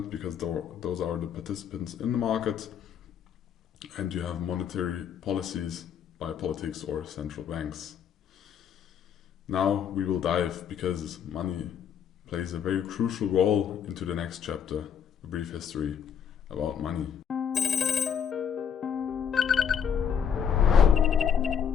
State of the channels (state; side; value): quieter; right; 8.0 dB